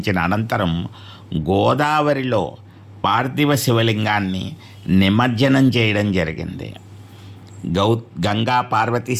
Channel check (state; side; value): identical; both; correlation 1.00